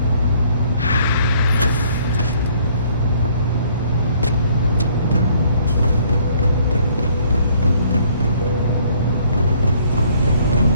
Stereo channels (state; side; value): inverted; both; correlation -0.62